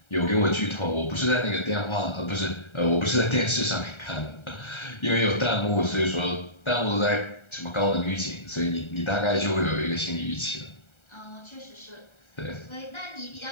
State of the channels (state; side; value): late; right; 1.3 ms